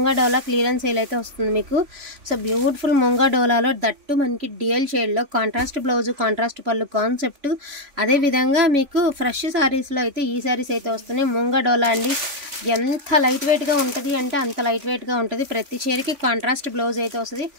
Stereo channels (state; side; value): late; left; 3.5 ms